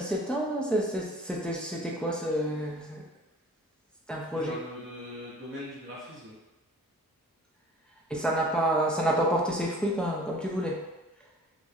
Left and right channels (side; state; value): both; normal; correlation 0.47